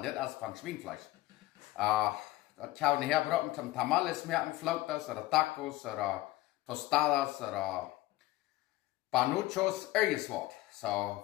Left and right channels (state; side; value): quieter; right; 17.5 dB